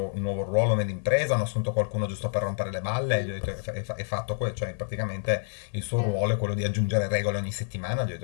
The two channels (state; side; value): silent; right; 59 dB below the other